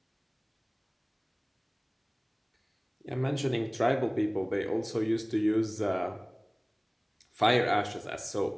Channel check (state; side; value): identical; both; correlation 1.00